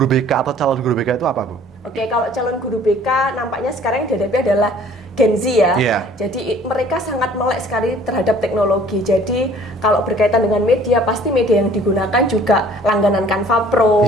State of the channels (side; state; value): both; normal; correlation 0.53